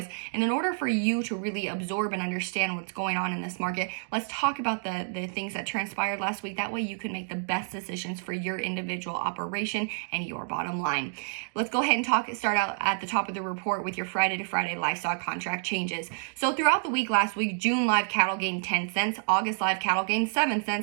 And in order for you to really absorb and understand what's going on in this market, let's talk about the things that transpired last week. That way you can make the best decisions for your individual operation and your bottom line. Let's go ahead and start out at the top of the report with your Friday to Friday livestock contract changes. So throughout the week last week, June live cattle gained 10 cents, August live cattle gained 7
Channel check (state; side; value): silent; left; digital silence